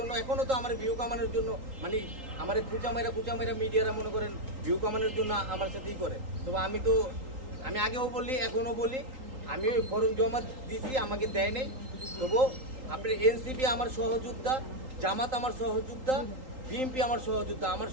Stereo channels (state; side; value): late; left; 3.8 ms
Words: এখনো তো আমার ভিউ কামানোর জন্য মানে আমার কুচামাইরা মিডিয়ারা মনে করেন ভিউ কামানোর জন্য আমার সাথেই করে। তবে আমি আগেও বলি এখনো বলি, আমি ওই ফর্ম জমা দিছি, আমাকে দেয় নেই। তবু আপনার এনসিপি আমার সহযোদ্ধা, জামাত আমার সহযোদ্ধা, বিএনপি আমার সহযোদ্ধা, আমার